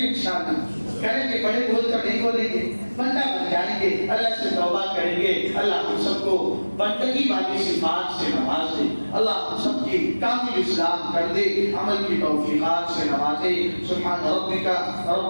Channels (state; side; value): inverted; both; correlation -1.00